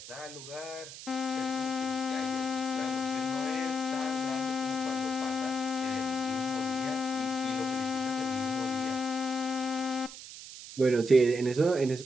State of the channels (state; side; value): noise; right; hiss, 12 dB below the sound